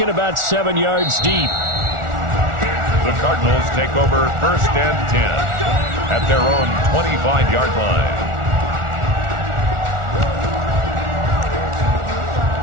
about 7 yards deep. The Cardinals take over 1st and 10 at their own 25-yard line.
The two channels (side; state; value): left; late; 1.4 ms